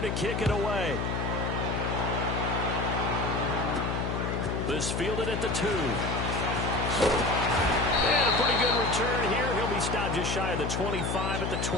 to kick it away. This fielded at the 2. And a pretty good return here. He'll be stopped just shy of the 25 at the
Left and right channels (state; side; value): noise; left; hum, 1 dB below the sound